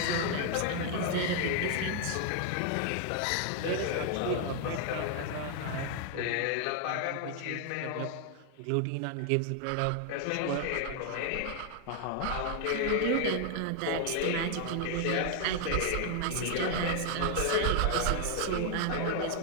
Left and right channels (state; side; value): different; both; correlation 0.00